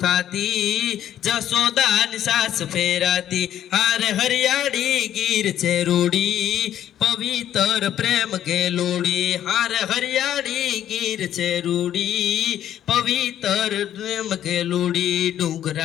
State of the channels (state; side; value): quieter; right; 11.1 dB